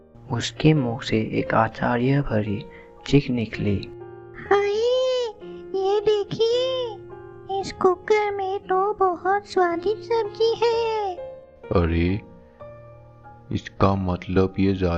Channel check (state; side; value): identical; both; correlation 1.00